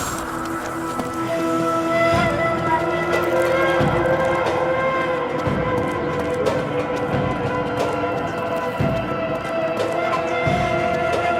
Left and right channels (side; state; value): both; identical; correlation 1.00